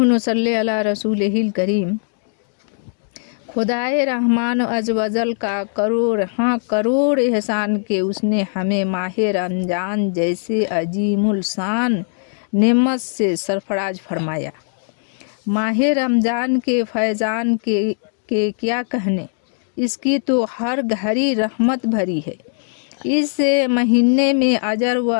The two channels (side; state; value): right; silent; digital silence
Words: नसल्ली अला रसूलिहिल करीम। खुदाए रहमान अज़वजल का करोड़ एहसान के उसने हमें माह रमज़ान जैसे अजीमुल शान नेमत से सरफराज फरमाया। माह रमज़ान के फैज़ान के क्या कहने, इसकी तो हर घड़ी रहमत भरी है। इस महीने में अजर